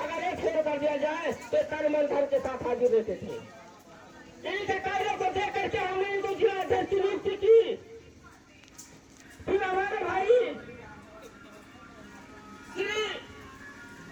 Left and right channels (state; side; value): identical; both; correlation 1.00